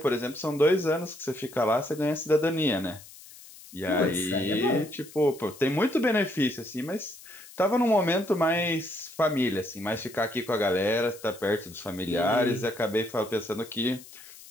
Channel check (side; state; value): left; noise; hiss, 19 dB below the sound